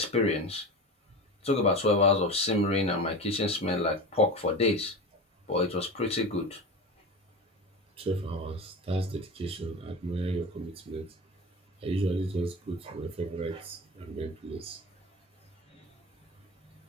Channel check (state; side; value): normal; both; correlation 0.28